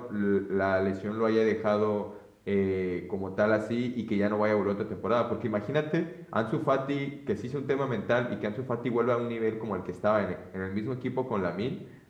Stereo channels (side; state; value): both; identical; correlation 1.00